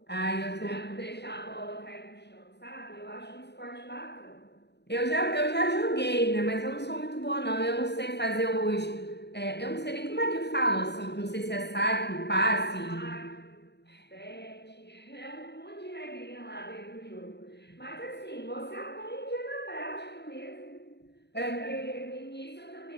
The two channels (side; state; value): right; late; 0.49 ms